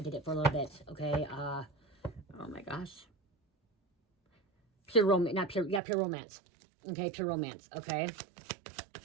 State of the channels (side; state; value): left; drops out; at 5.8 s